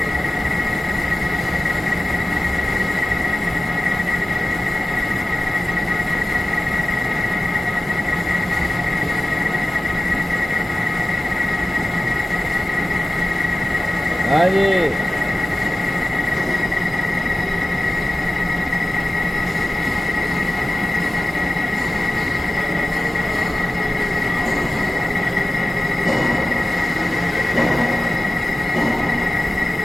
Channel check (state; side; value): normal; both; correlation 0.96